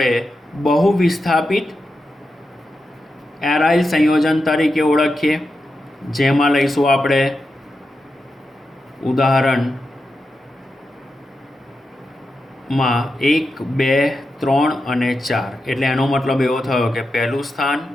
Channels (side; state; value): both; normal; correlation 0.89